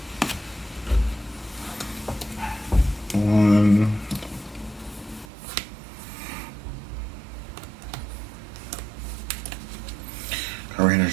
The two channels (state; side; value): drops out; left; at 5.2 s